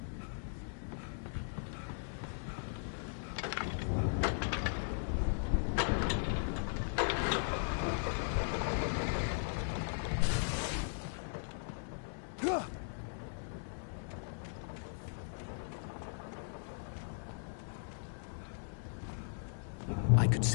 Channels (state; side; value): silent; right; digital silence